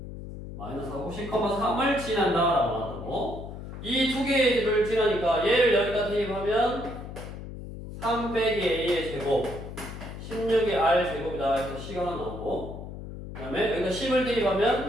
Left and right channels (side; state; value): left; noise; hum, 10 dB below the sound